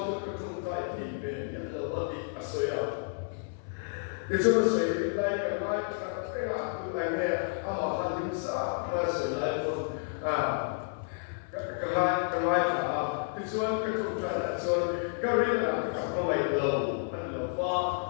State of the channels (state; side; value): silent; right; 57 dB below the other